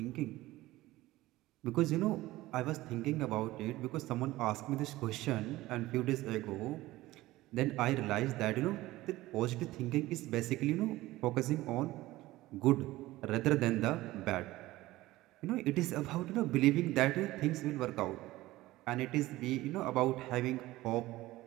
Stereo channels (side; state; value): left; quieter; 17.6 dB